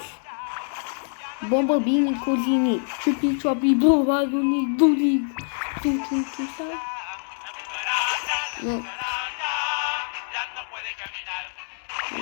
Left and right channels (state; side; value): silent; right; digital silence